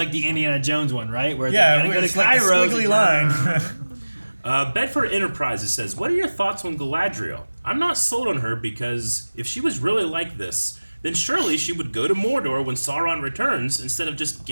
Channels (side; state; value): both; inverted; correlation -1.00